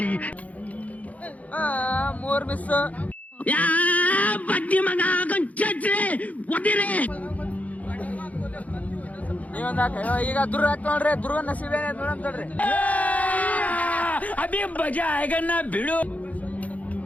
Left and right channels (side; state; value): right; late; 0.072 ms